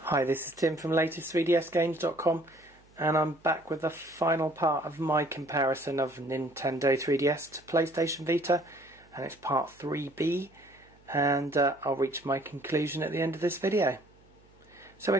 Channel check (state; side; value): noise; right; hum, 29 dB below the sound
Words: Hi, this is Tim from latest3dsgames.com, and I'm back with the final part of my comparison of Nintendo 3DS to PlayStation Vita, and it's part 3B, and I'll reach my conclusion at the end of this video. So